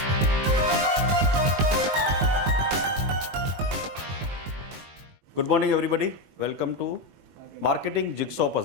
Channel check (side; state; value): left; late; 21 ms